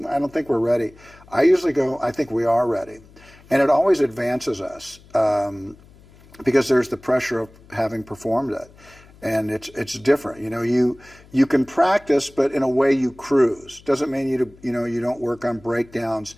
I don't think we're ready. I usually go, I think we are ready. And it always advances us because there's the pressure of having performed it. And it's different. You can practice, but in a way you cruise. Doesn't mean you don't work on breakdowns,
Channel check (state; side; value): noise; left; hum, 25 dB below the sound